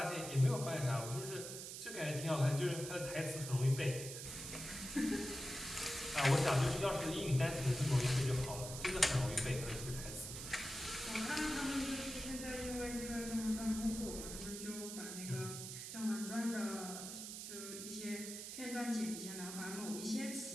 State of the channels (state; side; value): noise; right; hiss, 8 dB below the sound